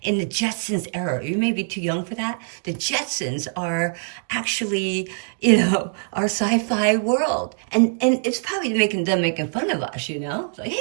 in the Jetsons era. You may be too young for that. The Jetsons are actually, you know, our sci-fi world. And it's probably making fun of us, you know? It's like,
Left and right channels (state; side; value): silent; left; digital silence